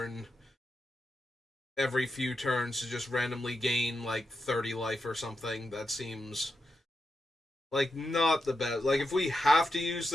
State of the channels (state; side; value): normal; both; correlation 0.87